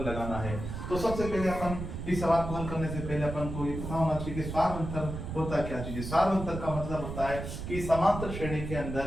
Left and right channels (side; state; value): right; noise; rumble, 6 dB below the sound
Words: लगाना है। तो सबसे पहले अपन इस सवाल को हल करने से पहले अपन को ये पता होना चाहिए कि सार अंतर होता क्या चीज है। सार अंतर का मतलब होता है कि समांतर श्रेणी के अंदर